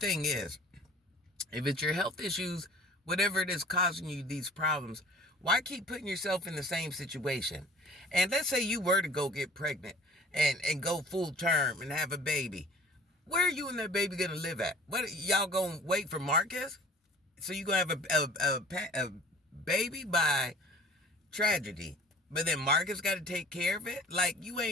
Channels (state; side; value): normal; both; correlation 0.47